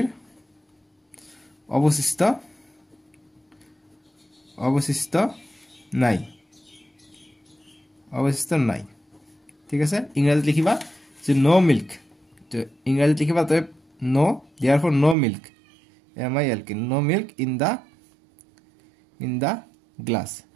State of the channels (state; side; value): drops out; left; at 15.2 s